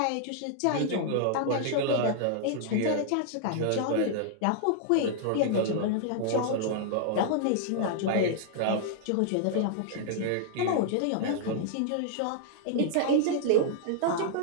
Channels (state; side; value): different; both; correlation -0.01